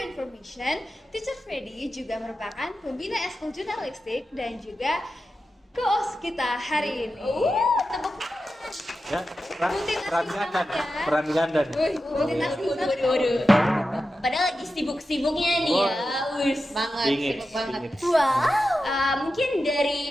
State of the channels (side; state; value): both; normal; correlation 0.91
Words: information, Teacher Freddy juga merupakan pembina Eskul Jurnalistik dan juga co-host kita hari ini. Tepuk Ya, peran ganda. Waduh. Padahal lagi sibuk-sibuknya nih ya. Sibuk banget. Wow. Mungkin